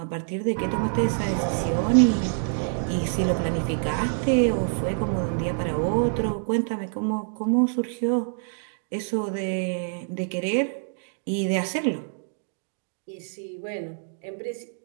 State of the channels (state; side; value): silent; left; 61 dB below the other